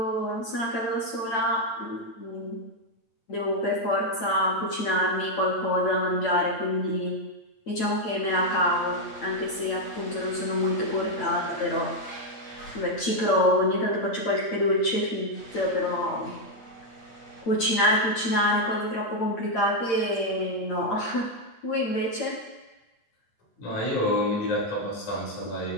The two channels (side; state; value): right; late; 8.9 ms